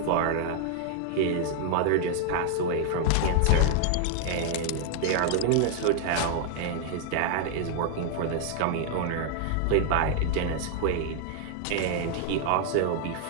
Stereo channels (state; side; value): different; both; correlation 0.00